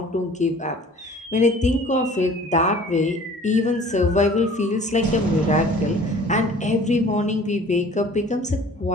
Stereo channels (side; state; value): both; normal; correlation 0.49